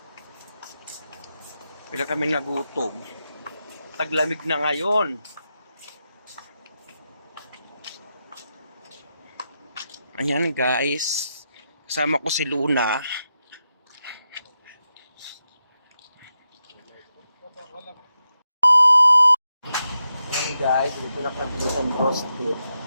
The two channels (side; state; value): both; inverted; correlation -0.87